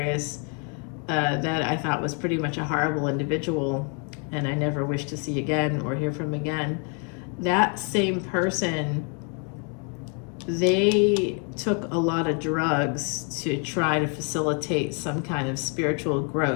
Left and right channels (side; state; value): right; quieter; 38.6 dB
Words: that I thought was pretty much a horrible individual and I never wish to see again or hear from again, that same person, they took a lot of drugs to try to facilitate some kind of spiritual